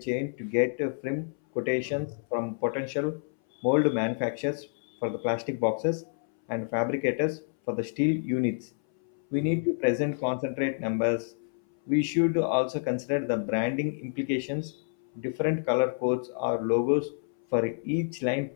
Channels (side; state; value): right; silent; 59 dB below the other